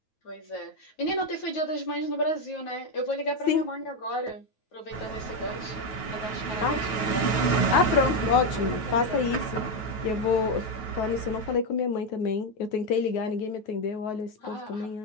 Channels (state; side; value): late; right; 9.3 ms